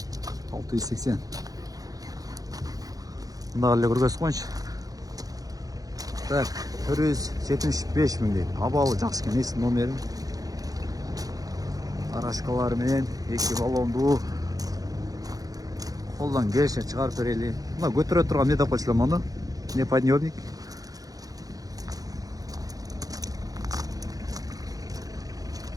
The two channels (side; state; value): left; late; 0.18 ms